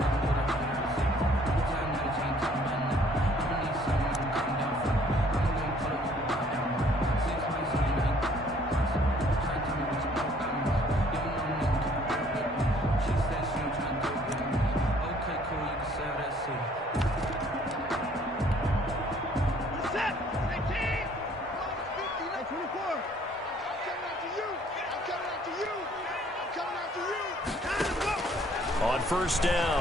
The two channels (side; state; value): both; normal; correlation 0.59